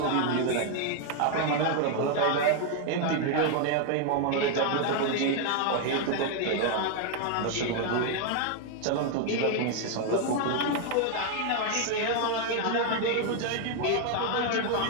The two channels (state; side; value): different; both; correlation 0.00